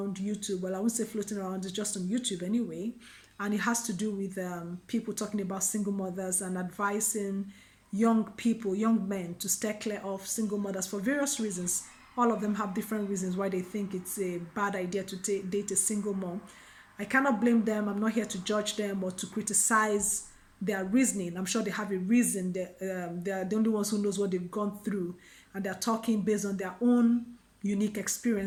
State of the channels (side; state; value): both; identical; correlation 1.00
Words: YouTube. Well, I won't say floating around, it's just on YouTube anyway, and it has to do with people talking about single mothers and advising young people, young men, to stay clear of single mothers for various reasons. All of them have different reasons why they think it's a bad idea to date a single mom. I cannot blame them. I'm not here to judge them or to criticize their reasoning. I'm sure they have a reason. They are the only ones who knows what they've gone through, and they're talking based on their own unique